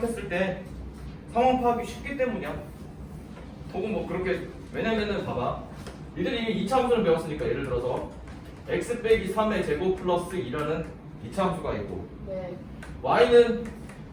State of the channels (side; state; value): both; identical; correlation 1.00